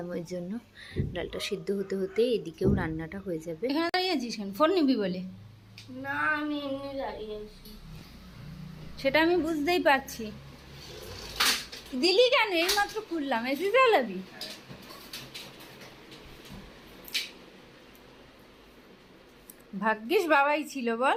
ওই জন্য ডালটা সিদ্ধ হতে হতে এদিকেও রান্নাটা হয়ে যাবে। এখানে দাঁড়িয়ে আছিস কেন, ফোন নিবি বলে? না আমি এমনি দাঁড়িয়ে আছি। সেটা আমি বুঝতেই পারছি, দিলি কেন, এই মাত্র খুললাম, এসে চালাবি, ভাগ্যিস বাবাই ছিল বল,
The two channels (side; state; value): both; identical; correlation 1.00